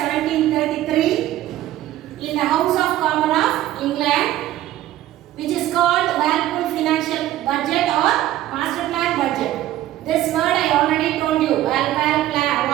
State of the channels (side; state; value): left; quieter; 14.0 dB